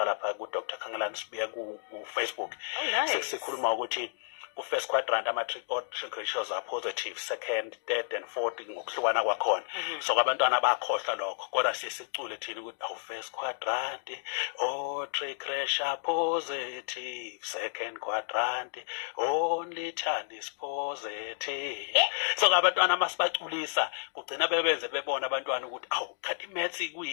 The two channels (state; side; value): silent; right; 57 dB below the other